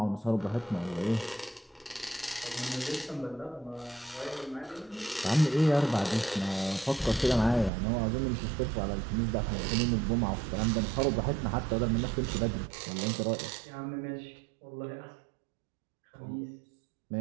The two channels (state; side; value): drops out; left; at 7.7 s